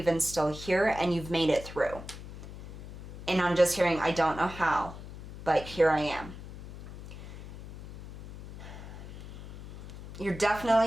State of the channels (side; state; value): left; noise; hum, 13 dB below the sound